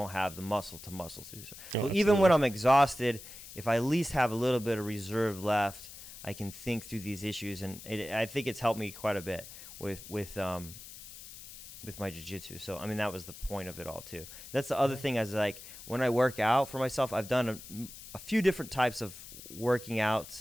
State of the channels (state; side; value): noise; left; hiss, 14 dB below the sound